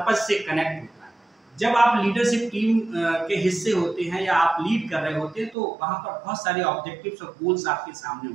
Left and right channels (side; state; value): left; drops out; at 5.6 s